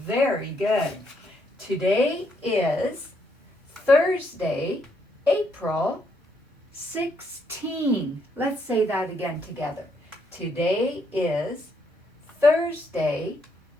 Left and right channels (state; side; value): normal; both; correlation 0.74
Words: Very good. Today is Thursday, April 16. Let's say that again together. Today is Thursday,